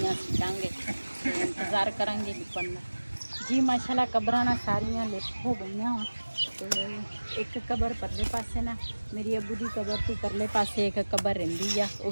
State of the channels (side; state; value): both; inverted; correlation -1.00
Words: ਸਿੱਟਾਂਗੇ ਇੰਤਜ਼ਾਰ ਕਰਾਂਗੇ ਲਿਪਣ ਦਾ। ਜੀ ਮਾਸ਼ਾਅੱਲਾ ਕਬਰਾਂ ਨਾ ਸਾਰੀਆਂ ਲਿਪ ਹੋ ਗਈਆਂ ਤੇ ਇੱਕ ਕਬਰ ਪਰਲੇ ਪਾਸੇ ਨਾ ਮੇਰੀ ਅੱਬੂ ਦੀ ਕਬਰ ਤੋਂ ਪਰਲੇ ਪਾਸੇ ਇੱਕ ਕਬਰ ਰਹਿੰਦੀ ਆ ਉਹ